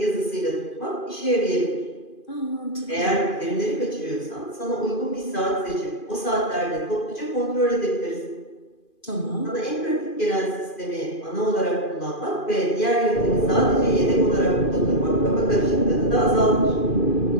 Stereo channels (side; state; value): right; late; 2.5 ms